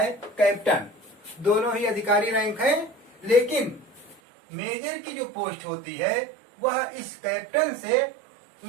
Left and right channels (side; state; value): left; drops out; at 4.2 s